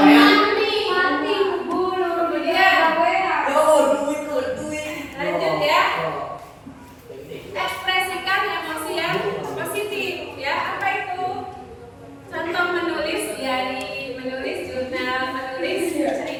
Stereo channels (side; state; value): both; identical; correlation 1.00